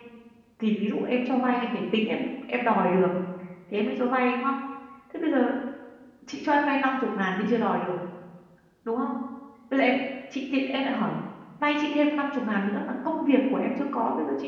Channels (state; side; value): identical; both; correlation 1.00